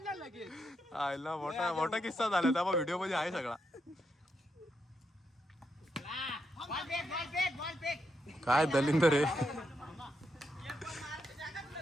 आयला मोठा किस्सा झाला. त्या व्हिडिओ मध्ये आहे सगळा. काय दलिंदर आहे.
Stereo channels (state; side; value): normal; both; correlation 0.82